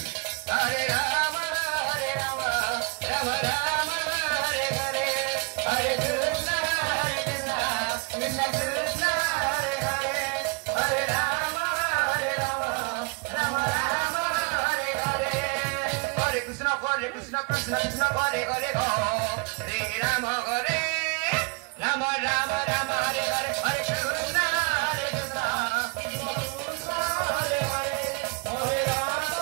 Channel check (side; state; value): left; quieter; 31.7 dB